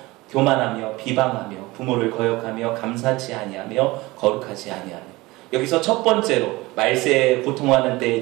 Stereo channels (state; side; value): quieter; left; 21.0 dB